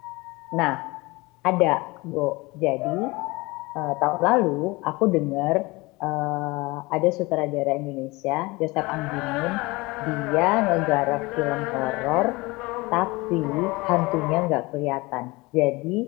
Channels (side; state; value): right; quieter; 23.4 dB